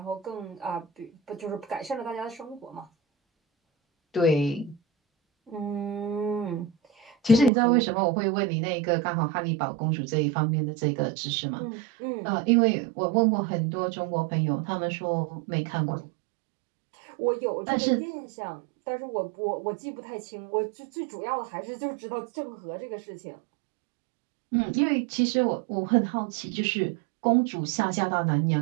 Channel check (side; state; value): left; drops out; at 7.5 s